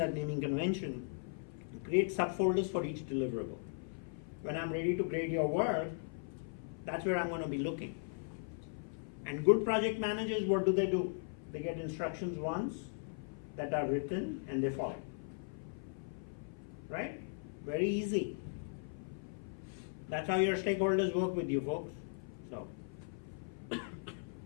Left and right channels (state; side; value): silent; right; 52 dB below the other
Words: naming convention. Create subfolders for each deliverable. When I'm ready to grade your work, that's where I'm going to be looking. And good project managers, what do? They get instructions once that are written and they follow. Right? Very easy. That's how your stakeholders work with you, folks. So,